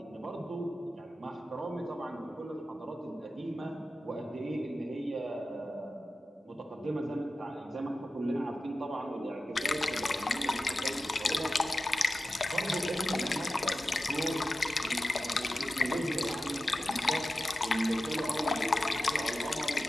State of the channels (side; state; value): both; normal; correlation 0.92